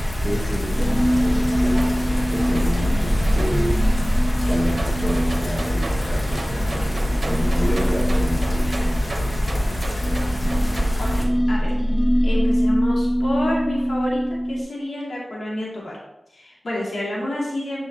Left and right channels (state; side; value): normal; both; correlation 0.98